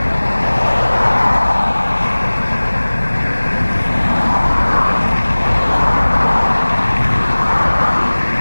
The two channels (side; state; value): both; inverted; correlation -1.00